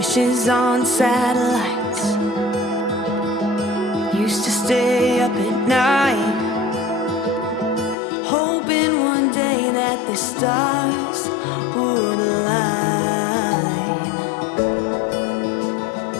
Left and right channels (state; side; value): drops out; right; at 8.0 s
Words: flashes on satellites. Used to stay up at night, hoping one day that the stars would align.